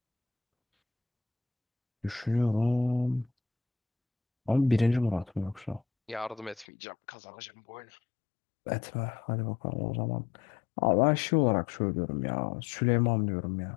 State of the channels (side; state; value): right; drops out; at 6.7 s